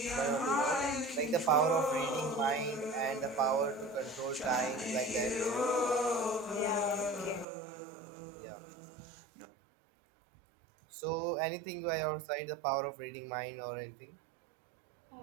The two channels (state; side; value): drops out; left; at 7.5 s